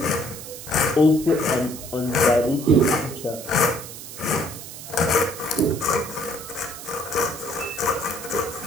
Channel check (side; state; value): right; noise; hiss, 12 dB below the sound